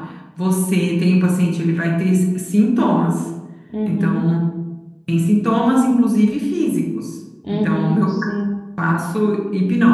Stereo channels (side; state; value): both; identical; correlation 1.00